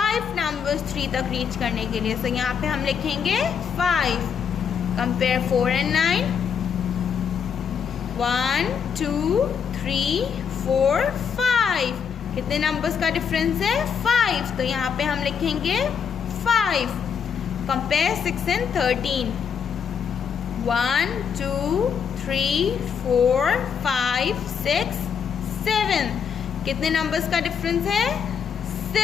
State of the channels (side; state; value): right; quieter; 7.1 dB